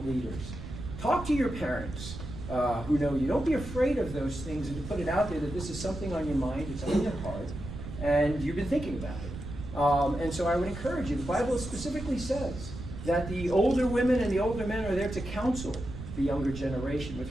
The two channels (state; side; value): noise; right; rumble, 10 dB below the sound